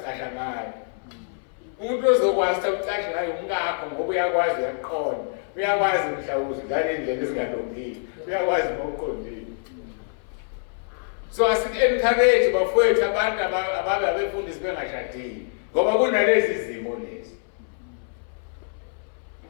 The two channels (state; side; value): silent; right; 62 dB below the other